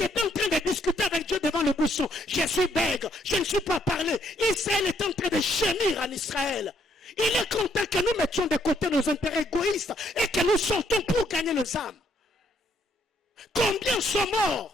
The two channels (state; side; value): normal; both; correlation 0.70